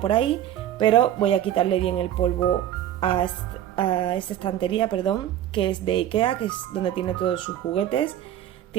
ahí, pero voy a quitarle bien el polvo a esta estantería, perdón, que es de Ikea, que es donde tiene todos sus juguetes.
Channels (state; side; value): quieter; left; 11.5 dB